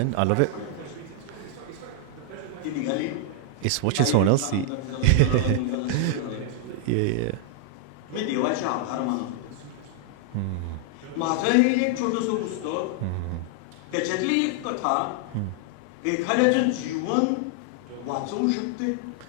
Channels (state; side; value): different; both; correlation 0.00